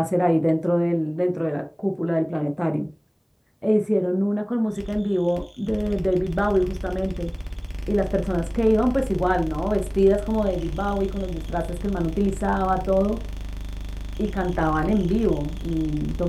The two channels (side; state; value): both; identical; correlation 1.00